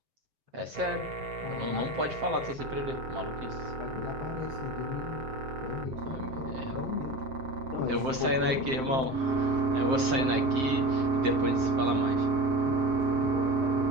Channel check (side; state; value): left; late; 7.6 ms